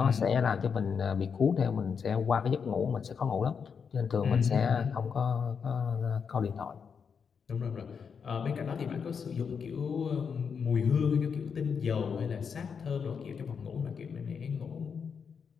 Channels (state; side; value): quieter; right; 6.3 dB